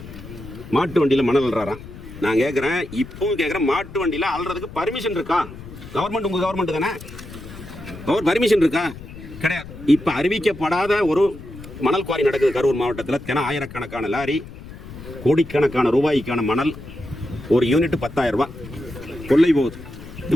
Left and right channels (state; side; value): noise; left; rumble, 15 dB below the sound